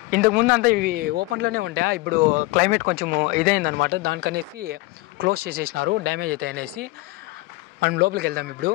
ఇంతకుముందు అంతా ఇవి ఓపెన్లోనే ఉండే, ఇప్పుడు క్లైమేట్ కొంచెం ఇదైందనమాట, దానికనేసి క్లోజ్ చేసేసినారు, డ్యామేజ్ అవుతాయి అనేసి. మనం లోపలికి వెళ్దాం ఇప్పుడు.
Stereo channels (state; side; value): quieter; right; 21.3 dB